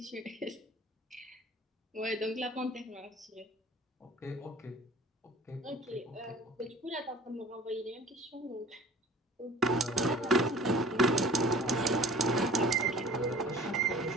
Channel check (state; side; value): normal; both; correlation 0.48